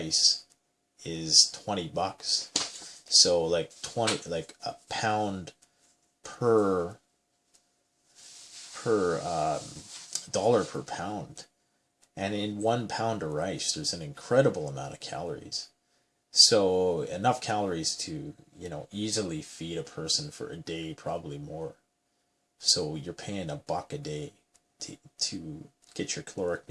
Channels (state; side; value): identical; both; correlation 1.00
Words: is $20. So like a pound per dollar per pound. And in 1 pound of rice, there's an incredible amount of calories. So enough calories to, easily feed a person for a day, probably more. So you're paying $1 a day to get your caloric